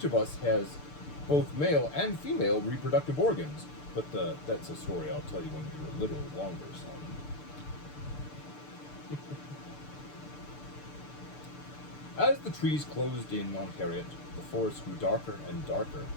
of us has both male and female reproductive organs, but that's a story I'll tell you when you're a little longer, son. As the trees closed in on Harriet, the forest grew darker and darker.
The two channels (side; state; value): right; late; 6.8 ms